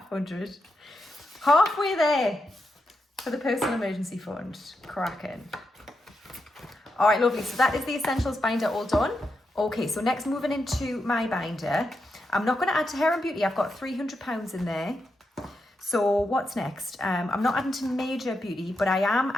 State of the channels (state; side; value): normal; both; correlation 0.85